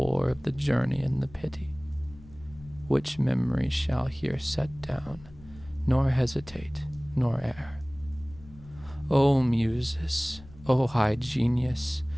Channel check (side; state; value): left; noise; rumble, 20 dB below the sound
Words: of the journey and the pity, which memory shall here set down, nor hesitate, nor err. O Muses, O high genius,